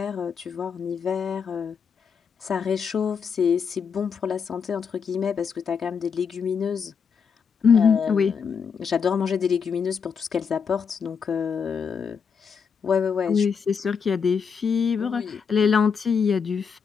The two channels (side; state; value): right; quieter; 6.3 dB